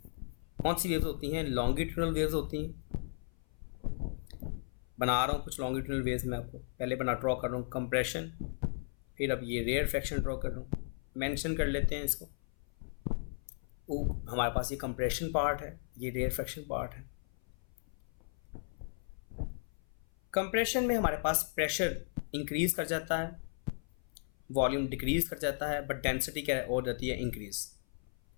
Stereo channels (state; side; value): silent; right; 54 dB below the other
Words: कौन सी वेव्स होती हैं, लॉन्गिट्यूडनल वेव्स होती हैं। बना रहा हूँ कुछ लॉन्गिट्यूडनल वेव्स, मैं आपको पहले ड्रॉ कर रहा हूँ कंप्रेशन, फिर अब ये रेयर फ्रैक्शन ड्रॉ कर रहा हूँ। मेंशन कर लेते हैं इसको, वो हमारे पास ये कंप्रेशन पार्ट है, ये रेयर फ्रैक्शन पार्ट है। कंप्रेशन में हमारे पास प्रेशर इंक्रीज कर जाता है, वॉल्यूम डिक्रीज कर जाता है, बट डेंसिटी क्या हो जाती है, इंक्रीज।